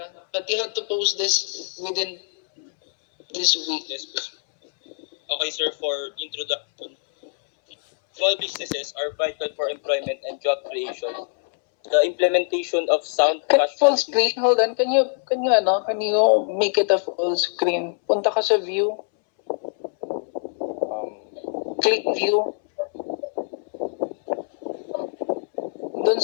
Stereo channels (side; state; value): right; silent; 63 dB below the other